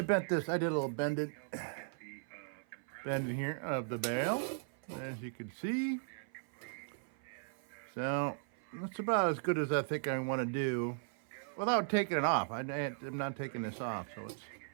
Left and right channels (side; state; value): left; silent; 53 dB below the other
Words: bent this. I did a little bending here of the bale, as you can see. So that's about as good as I think I want to do, without taking it off. I'm not taking this off, so